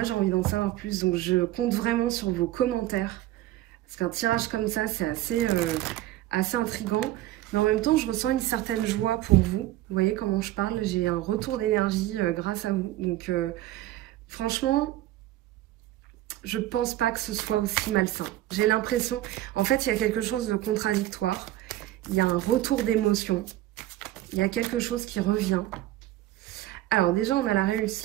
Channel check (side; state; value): left; quieter; 15.1 dB